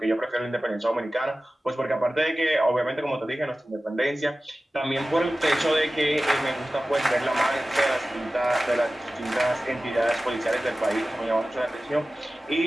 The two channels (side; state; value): both; normal; correlation 0.96